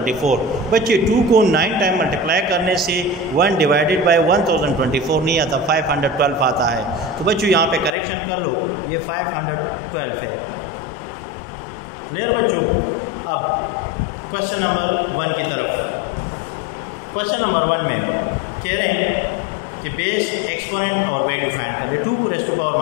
बच्चे 2 को 9 टाइम मल्टीप्लाई करने से 1 डिवाइडेड बाई 1024 नहीं आता, 512 आता है। तो बच्चों यहाँ पे करेक्शन कर लो, ये 512 है। क्लियर बच्चों? अब क्वेश्चन नंबर 1 की तरफ। क्वेश्चन नंबर 1 में कह रहे हैं कि बेस, एक्सपोनेंट और वैल्यू फाइंड कर ले। 2 raise to power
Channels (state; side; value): drops out; right; at 7.9 s